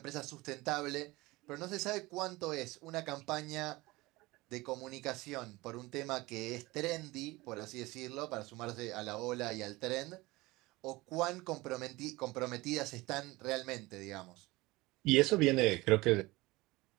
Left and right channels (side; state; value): left; quieter; 21.0 dB